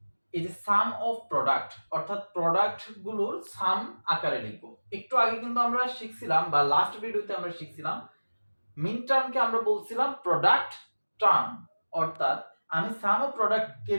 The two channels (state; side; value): inverted; both; correlation -1.00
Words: এই যে সাম অফ প্রোডাক্ট অর্থাৎ প্রোডাক্ট গুলোর সাম আকারে লিখব। একটু আগে কিন্তু আমরা শিখছিলাম বা লাস্ট ভিডিওতে আমরা শিখছিলাম মিন টার্মকে আমরা বলছিলাম প্রোডাক্ট টার্ম, অর্থাৎ আমি সাম অফ প্রোডাক্ট কে